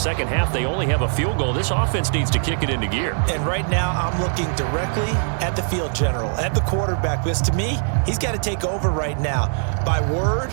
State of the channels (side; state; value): left; silent; digital silence